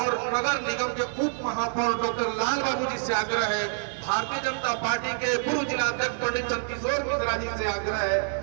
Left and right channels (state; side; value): silent; left; digital silence